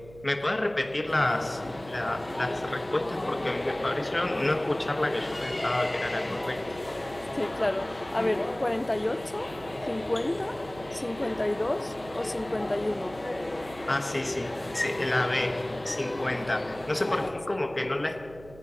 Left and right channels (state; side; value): noise; right; hum, 19 dB below the sound